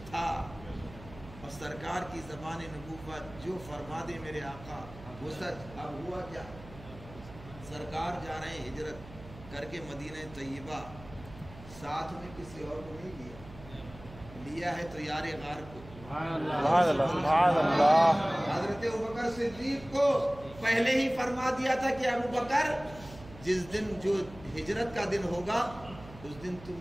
تھا۔ اور سرکار کی زبان نبوت جو فرما دے میرے آقا وہ سچ۔ اب ہوا کیا؟ سرکار جا رہے ہیں ہجرت کر کے مدینہ طیبہ، ساتھ میں کسی اور کو نہیں لیا ہے تو یار غار کو، حضرت ابوبکر صدیق کو پہلے ہی فرما دیا تھا کہ ابوبکر جس دن جو ہجرت کا دن ہوگا اس دن تم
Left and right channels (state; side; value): noise; right; hum, 17 dB below the sound